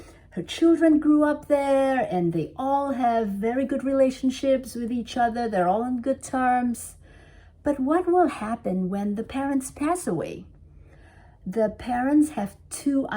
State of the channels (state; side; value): identical; both; correlation 1.00